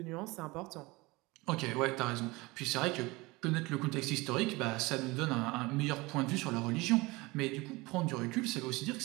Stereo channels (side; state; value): left; quieter; 22.9 dB